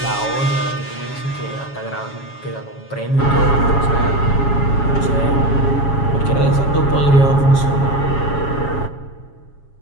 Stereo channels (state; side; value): late; right; 7.2 ms